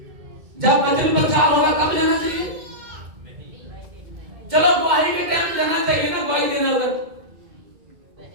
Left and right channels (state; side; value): late; left; 2.1 ms